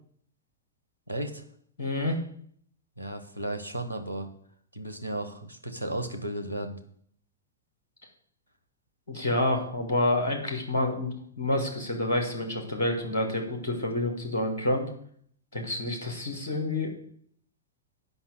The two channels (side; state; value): both; inverted; correlation -0.52